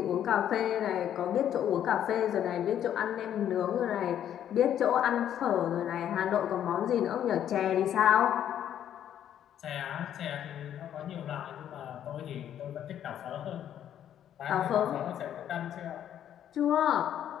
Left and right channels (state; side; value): quieter; right; 10.3 dB